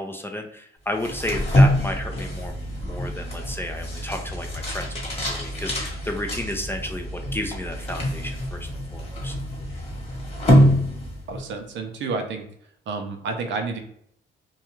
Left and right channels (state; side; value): normal; both; correlation 0.74